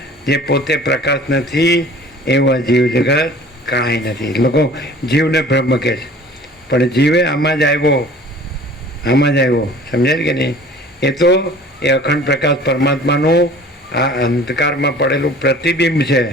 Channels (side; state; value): both; normal; correlation 0.47